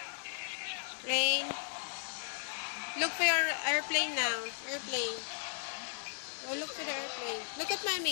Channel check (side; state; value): right; silent; digital silence